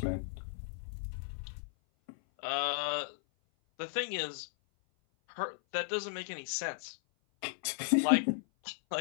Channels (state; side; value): silent; right; 54 dB below the other